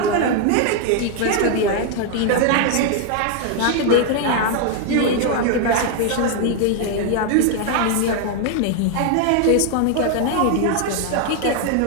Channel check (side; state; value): both; different; correlation 0.00